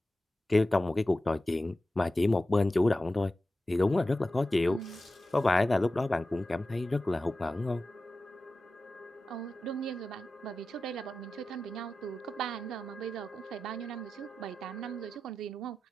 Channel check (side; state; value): both; normal; correlation 0.93